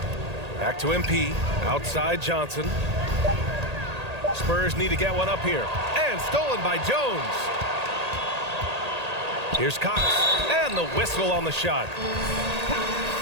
Back to MP. Outside Johnson. Spurs need to get one up here. And stolen by Jones. Here's Cox. And the whistle on the shot.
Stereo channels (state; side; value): late; left; 1.8 ms